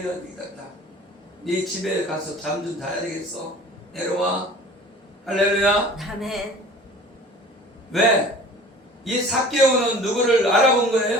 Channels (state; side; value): normal; both; correlation 0.44